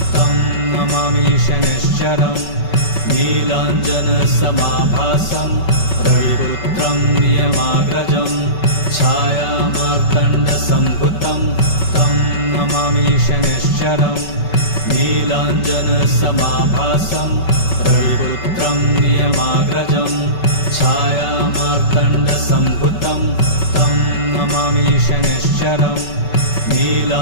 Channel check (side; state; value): right; late; 5.3 ms